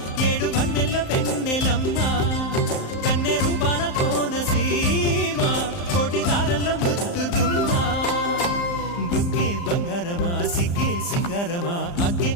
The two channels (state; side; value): late; right; 35 ms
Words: ఏడు వన్నెల్లో వెన్నెలమ్మ కన్నె రూపాన కోనసీమ కోటి తారల్లో ముద్దు గుమ్మ బుగ్గే బంగారమా సిగ్గే సింగారమా అగ్గే